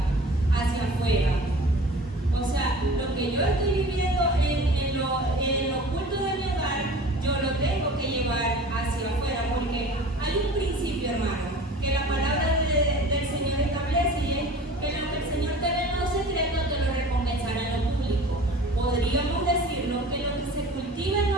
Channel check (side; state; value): both; normal; correlation 0.42